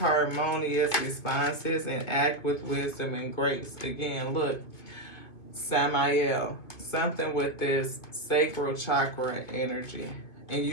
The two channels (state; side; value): late; right; 2.4 ms